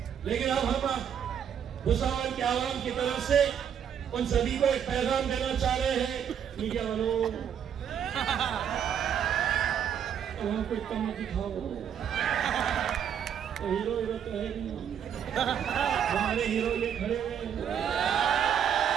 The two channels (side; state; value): left; quieter; 8.6 dB